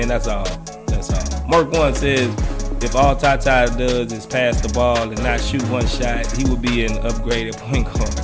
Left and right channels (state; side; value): identical; both; correlation 1.00